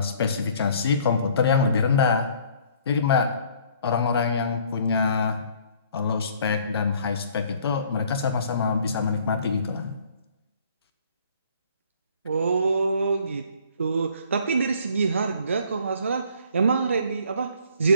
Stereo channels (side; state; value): both; inverted; correlation -0.57